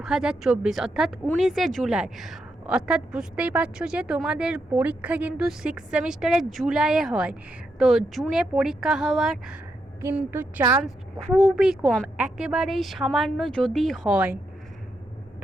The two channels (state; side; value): normal; both; correlation 0.82